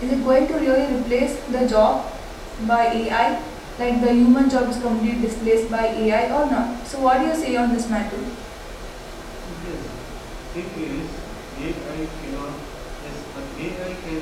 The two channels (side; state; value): both; identical; correlation 1.00